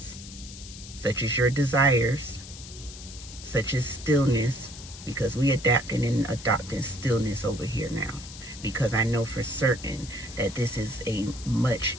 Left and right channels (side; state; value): left; noise; hiss, 14 dB below the sound